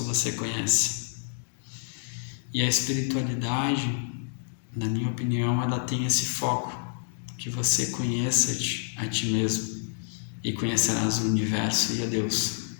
você conhece. E a espiritualidade, na minha opinião, ela tem esse foco, que você conheça a ti mesmo e conhecerás o universo e a Deus.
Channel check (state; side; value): silent; right; digital silence